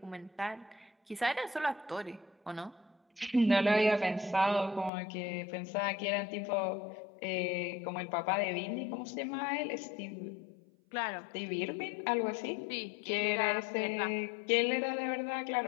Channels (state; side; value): drops out; right; at 4.9 s